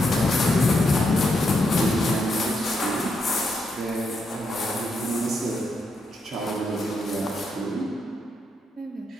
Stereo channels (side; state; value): both; normal; correlation 0.80